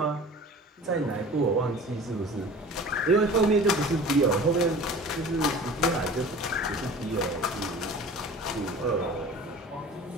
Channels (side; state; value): both; normal; correlation 0.41